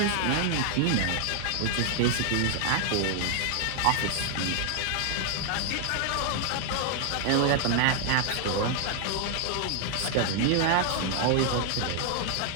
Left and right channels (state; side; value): different; both; correlation 0.00